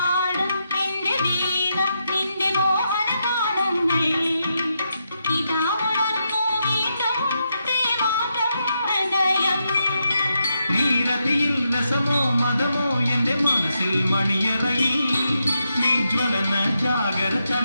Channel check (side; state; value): both; inverted; correlation -0.83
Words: നീരതിയിൽ രസമോ മതമോ എന്റെ മനസ്സിൽ മണിയറയിൽ. നീ ജ്വലന ജാഗര